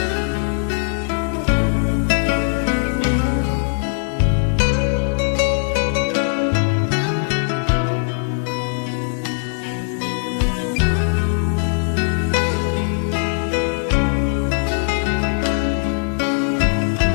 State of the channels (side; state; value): right; silent; 65 dB below the other